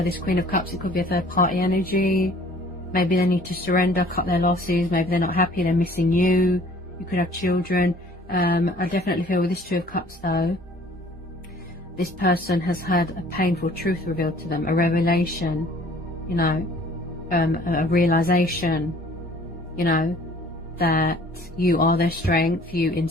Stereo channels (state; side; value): normal; both; correlation 0.53